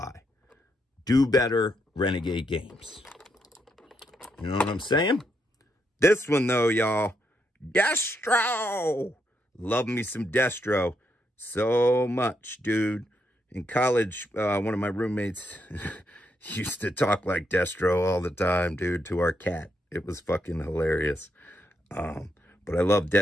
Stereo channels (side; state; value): both; normal; correlation 0.79